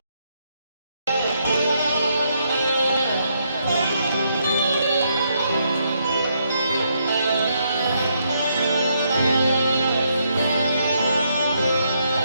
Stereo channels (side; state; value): both; inverted; correlation -0.76